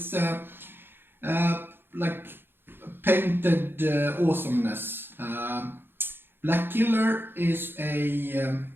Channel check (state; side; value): late; left; 0.10 ms